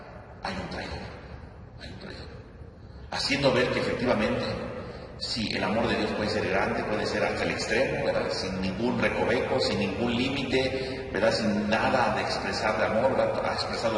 hay un traidor. Haciendo ver que efectivamente, sí, el amor de Dios puede ser grande, puede ser hasta el extremo, ¿verdad?, sin ningún recoveco, sin ningún límite, ¿verdad?, sin nada de expresar de amor, ¿verdad?, ha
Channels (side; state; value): both; identical; correlation 1.00